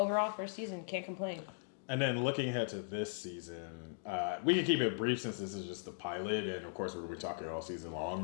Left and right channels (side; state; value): right; silent; digital silence